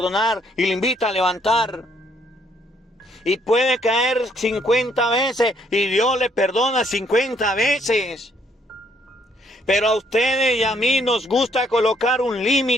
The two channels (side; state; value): both; normal; correlation 0.68